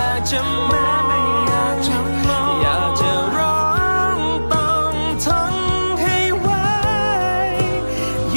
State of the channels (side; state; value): both; inverted; correlation -1.00